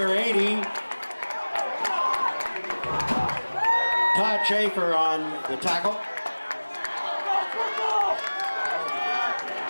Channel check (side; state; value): both; inverted; correlation -1.00